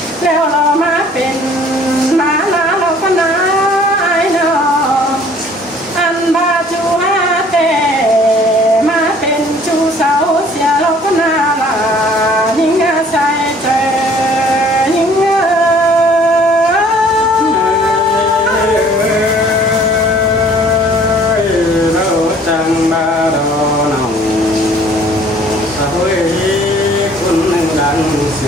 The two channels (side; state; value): both; normal; correlation 0.55